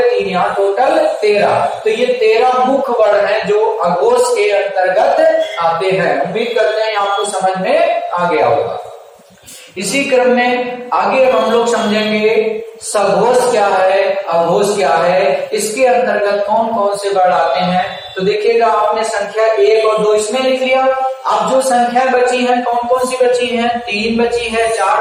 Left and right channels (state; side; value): identical; both; correlation 1.00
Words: 3 यहाँ, टोटल 13। तो ये 13 मुख्य वर्ण है जो अघोष के अंतर्गत आते हैं। उम्मीद करते हैं आपको समझ में आ गया होगा। इसी क्रम में आगे हम लोग समझेंगे सघोष क्या है, अघोष क्या है, इसके अंतर्गत कौन कौन से वर्ण आते हैं। तो देखिएगा, आपने संख्या 1 और 2 इसमें लिख लिया। अब जो संख्या बची है, कौन कौन सी बची है? 3 बची है,